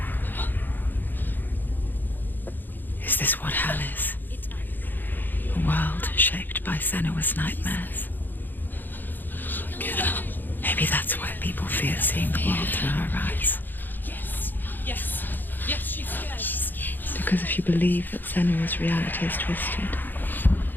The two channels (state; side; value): late; right; 0.090 ms